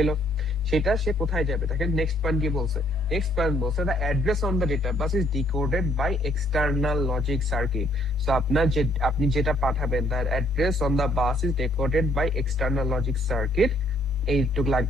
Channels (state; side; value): normal; both; correlation 0.66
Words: সেটা সে কোথায় যাবে? দেখেন নেক্সট পয়েন্ট কি বলছে, নেক্সট পয়েন্ট বলছে the address on the data bus is decoded by external logic circuit. So আপনার যে আপনি যেটা পাঠাবেন the address on the bus is decoded by external logic circuit, এইটুক